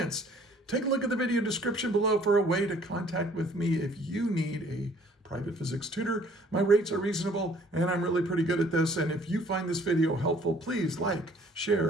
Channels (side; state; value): both; normal; correlation 0.57